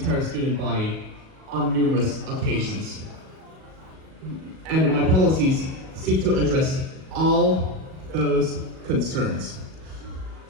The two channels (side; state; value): left; late; 38 ms